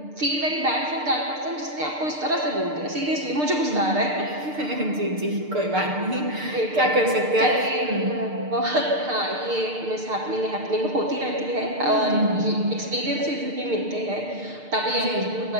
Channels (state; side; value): late; left; 6.6 ms